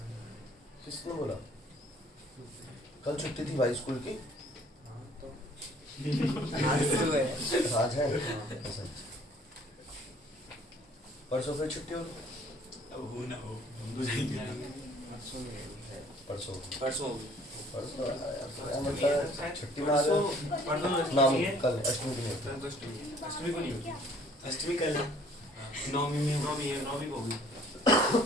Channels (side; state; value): both; normal; correlation 0.57